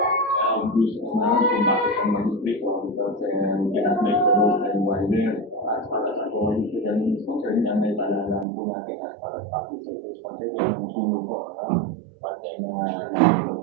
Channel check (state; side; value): drops out; left; at 8.5 s